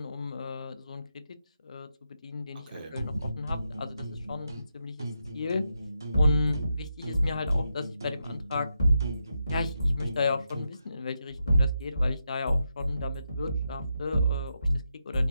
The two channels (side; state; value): both; inverted; correlation -0.84